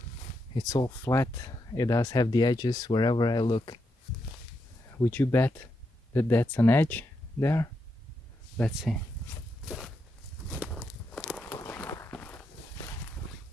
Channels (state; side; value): normal; both; correlation 0.83